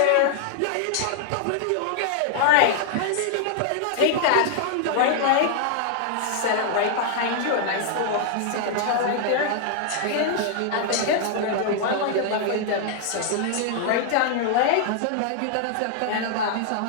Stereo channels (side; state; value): both; different; correlation 0.00